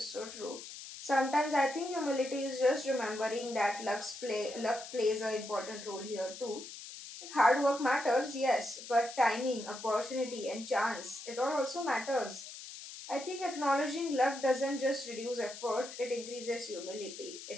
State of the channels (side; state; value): left; noise; hiss, 12 dB below the sound